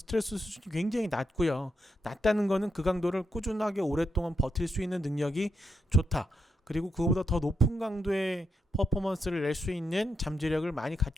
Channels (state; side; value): normal; both; correlation 0.83